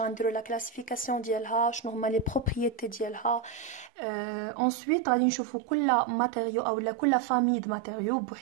لا كلاسيفيكاسيون ديالها، شنو هما لي بروبريتي ديالها. انsuite غادي نشوفوا كل ماتيريو او كل فامي د ماتيريو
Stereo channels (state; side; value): drops out; left; at 3.9 s